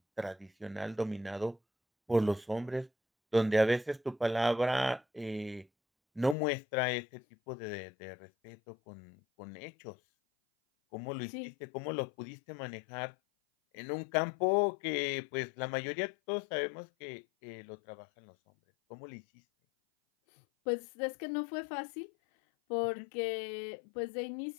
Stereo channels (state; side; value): drops out; right; at 6.4 s